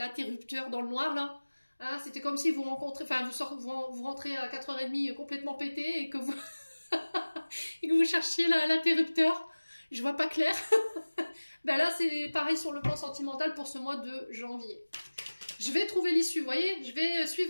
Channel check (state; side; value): inverted; both; correlation -1.00